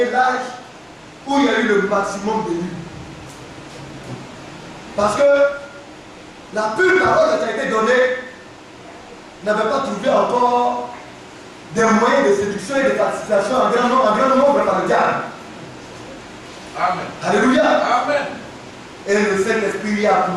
l'âge où il y a eu le maximum de nuits. Parce que la pure parole qui a été donnée n'avait pas trouvé encore des moyens de séduction et de participation en grand nombre par le diable. Amen. Alléluia. Amen. Et le Saint-Esprit a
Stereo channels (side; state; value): both; identical; correlation 1.00